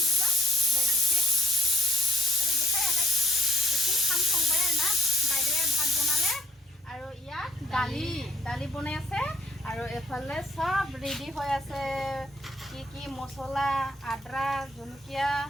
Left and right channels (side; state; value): both; normal; correlation 0.61